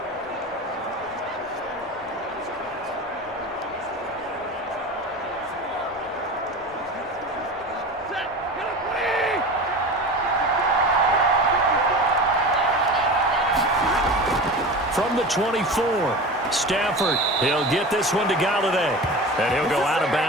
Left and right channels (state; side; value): normal; both; correlation 0.31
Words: From the 24, Stafford, he'll get this one to Golladay. And he'll go out of